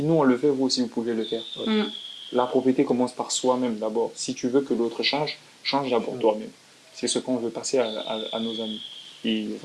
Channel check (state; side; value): identical; both; correlation 1.00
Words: nous on le fait, vous aussi vous pouvez le faire. Mm. La propriété commence par soi-même d'abord. Si tu veux que l'autre change, change d'abord toi-même. C'est ce qu'on veut passer à nos amis. Et